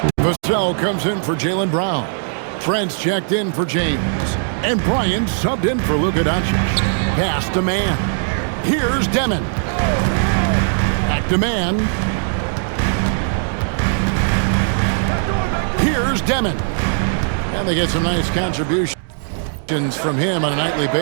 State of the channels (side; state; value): left; silent; digital silence